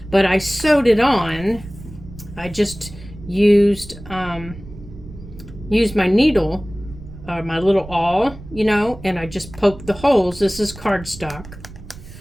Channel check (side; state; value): right; noise; rumble, 16 dB below the sound